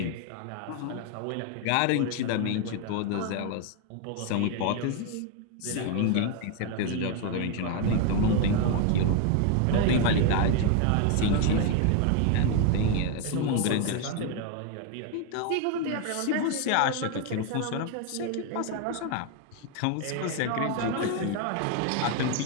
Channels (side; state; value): both; different; correlation 0.01